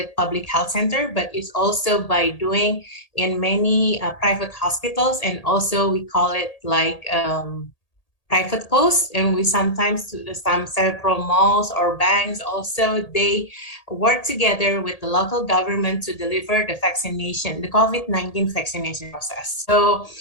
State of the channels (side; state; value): right; late; 1.8 ms